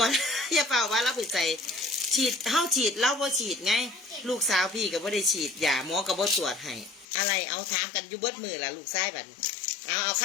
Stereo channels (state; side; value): drops out; right; at 7.1 s